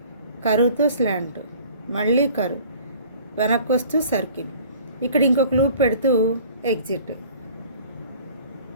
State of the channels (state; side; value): inverted; both; correlation -0.49